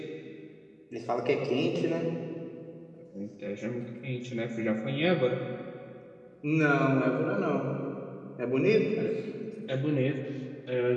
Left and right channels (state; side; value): identical; both; correlation 1.00